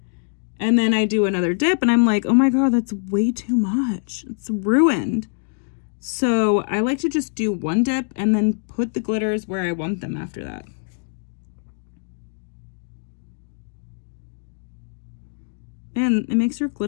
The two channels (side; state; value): right; silent; digital silence